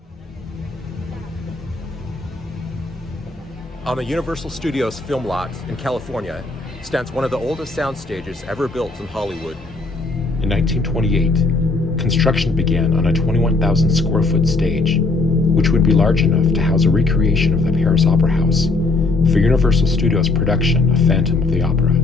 On the Universal Studios film lot in California stands one of the oldest sound stages ever built in Hollywood. In 1928, construction began on a 21,000 square foot stage, which would be large enough to house a recreation of the Paris Opera House for Universal Studios' production of Phantom of the Opera.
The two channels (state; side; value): quieter; right; 3.5 dB